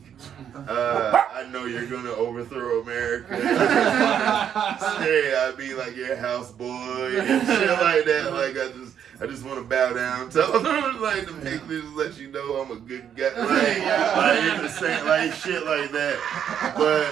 I know you're gonna overthrow America. Say I'd be like your houseboy and shit like that. Like I just want to bow down. Tell them like the Mexicans let you know I'm a good guy. Like the same like shit like that.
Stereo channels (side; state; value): left; quieter; 8.9 dB